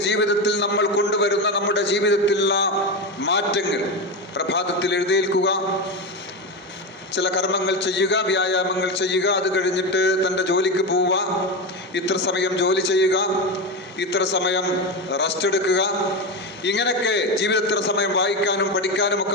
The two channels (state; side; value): normal; both; correlation 0.17